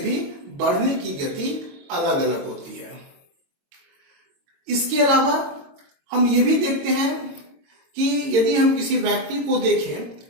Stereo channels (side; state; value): left; late; 22 ms